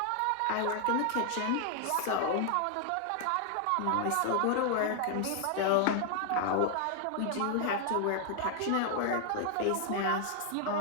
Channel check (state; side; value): different; both; correlation 0.00